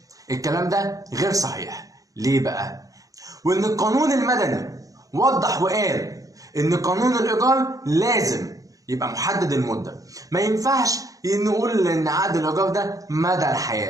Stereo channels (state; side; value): late; left; 0.17 ms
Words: الكلام ده غير صحيح. ليه بقى؟ وإن القانون المدني وضح وقال إن قانون الإيجار لازم يبقى محدد المدة. ما ينفعش نقول إن عقد الإيجار ده مدى